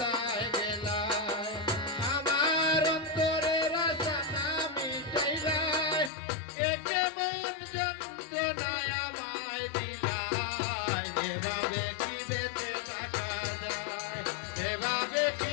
গেলা আমার অন্তরের আশা না মিটাইলা একে মন যন্ত্রণায় আমায় দিলা এভাবে কি বেঁচে থাকা যায় এভাবে কি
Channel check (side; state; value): right; drops out; at 6.1 s